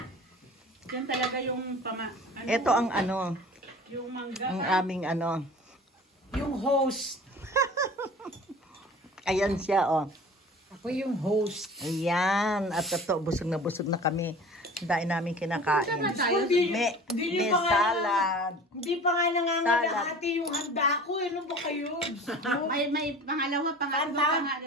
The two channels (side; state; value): both; normal; correlation 0.42